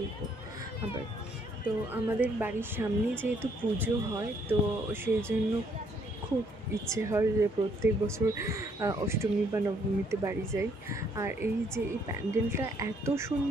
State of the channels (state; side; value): normal; both; correlation 0.68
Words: আবার। তো আমাদের বাড়ির সামনে যেহেতু পুজো হয়, তো সেই জন্য খুব ইচ্ছে হয় যে প্রত্যেক বছর অষ্টমী বা নবমীতে বাড়ি যাই। আর এই যে এই প্যান্ডেলটা এত